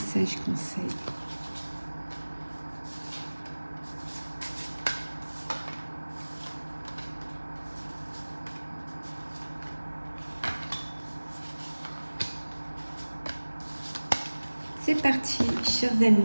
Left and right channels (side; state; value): both; inverted; correlation -1.00